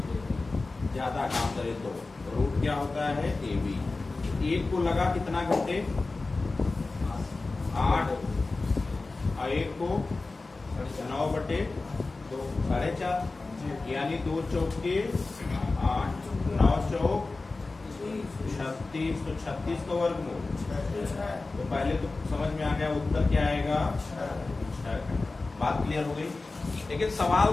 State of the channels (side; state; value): right; quieter; 3.5 dB